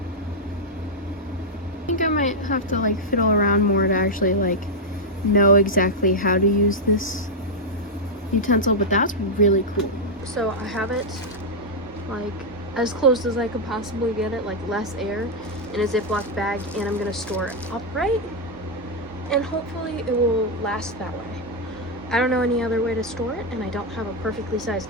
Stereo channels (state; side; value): normal; both; correlation -0.02